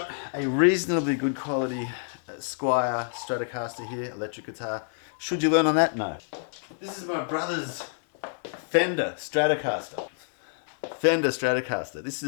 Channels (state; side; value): silent; right; digital silence